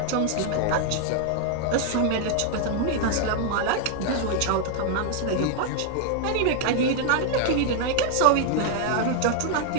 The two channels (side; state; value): both; different; correlation 0.00